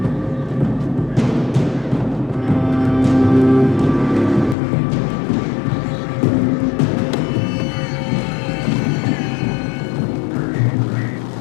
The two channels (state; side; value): drops out; right; at 4.5 s